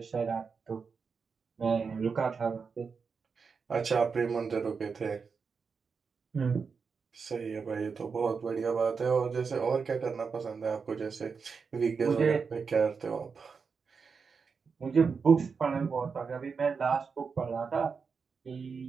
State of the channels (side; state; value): left; quieter; 5.4 dB